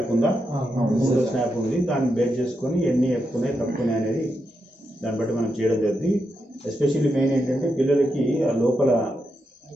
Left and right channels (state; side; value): normal; both; correlation 0.85